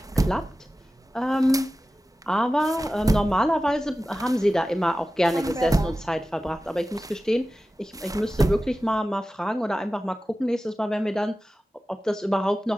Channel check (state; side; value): normal; both; correlation 0.95